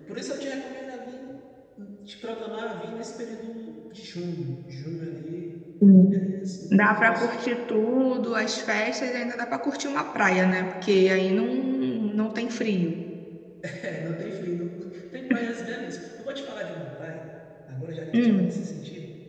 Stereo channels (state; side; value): identical; both; correlation 1.00